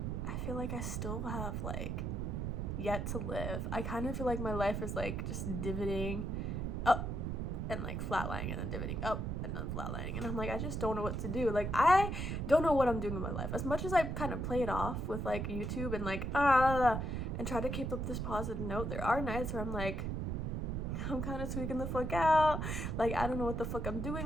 I feel like I still have like yet to live. I kind of feel like my life is like just divoting up and like flatlining, and then divoting up and then flatlining, and I'm like, I just don't know what to do. Like, I don't know what I'm doing in my life. As much as I kind of play it off with like YouTube and like and try to keep up this positive note, there are nights where I'm like, I'm kind of tweaking the fuck out. Like, I don't know what the fuck I'm doing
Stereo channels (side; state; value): right; noise; rumble, 2 dB below the sound